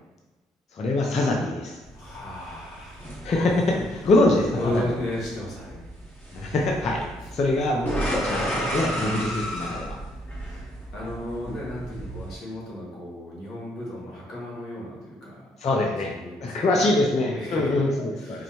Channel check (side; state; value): both; normal; correlation 0.70